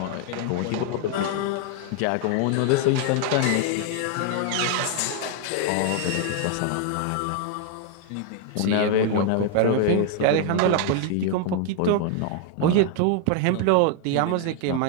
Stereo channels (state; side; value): different; both; correlation 0.00